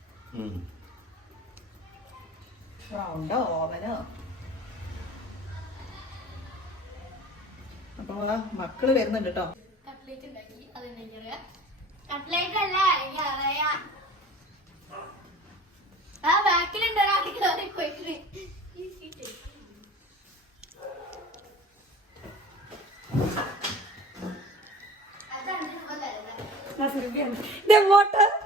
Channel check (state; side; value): normal; both; correlation 0.42